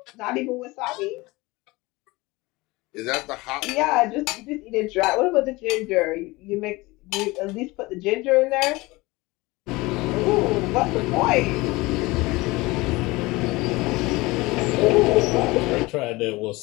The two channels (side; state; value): right; quieter; 22.0 dB